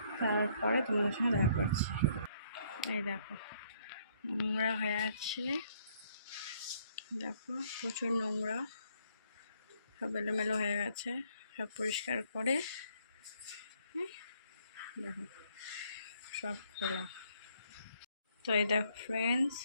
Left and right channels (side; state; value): both; inverted; correlation -0.67